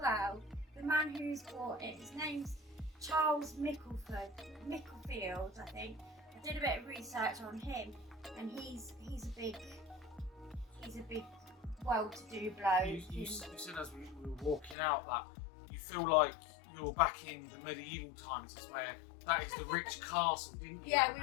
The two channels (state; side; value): drops out; right; at 14.8 s